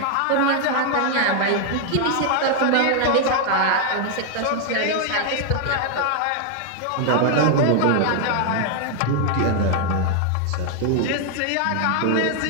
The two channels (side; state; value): both; different; correlation 0.00